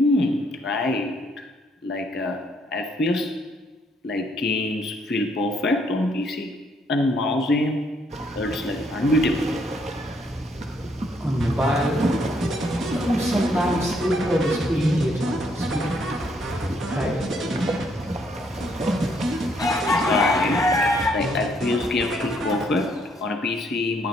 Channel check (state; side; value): normal; both; correlation 0.70